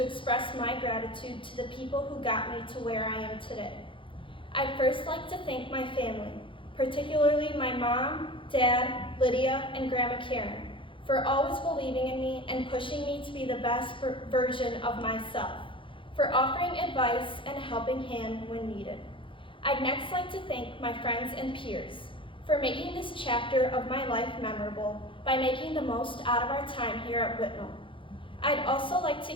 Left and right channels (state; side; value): late; right; 0.25 ms